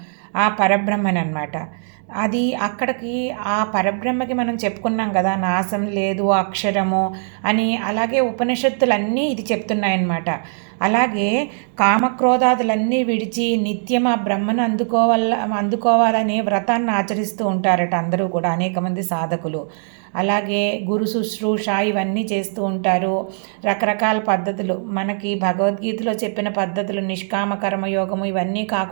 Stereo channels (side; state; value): left; silent; digital silence